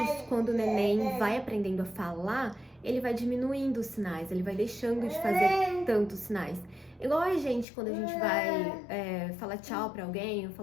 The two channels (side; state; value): right; drops out; at 7.7 s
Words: quando o neném vai aprendendo a falar, ele vai diminuindo os sinais, ele vai deixando de fazer tantos sinais. Igual a gente, quando a gente vai falar tchau pra alguém ou